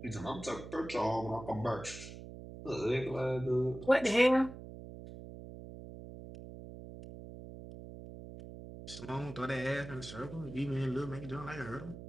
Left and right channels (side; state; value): right; noise; hum, 12 dB below the sound